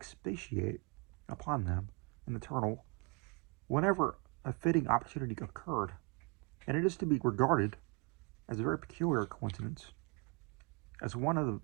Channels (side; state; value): left; quieter; 31.3 dB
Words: upon them in the Turtle whenever a fitting opportunity occurred. and it is to be regarded as a very peculiar coincidence, as one of the